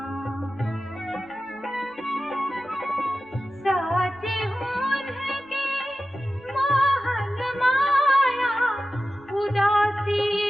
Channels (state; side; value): normal; both; correlation 0.94